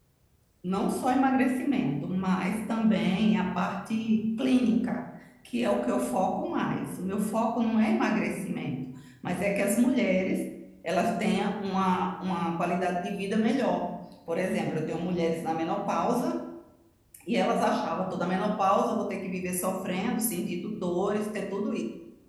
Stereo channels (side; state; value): both; identical; correlation 1.00